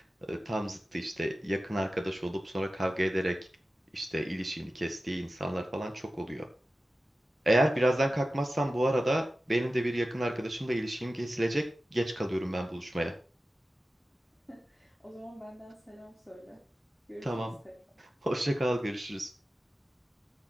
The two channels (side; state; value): both; normal; correlation 0.94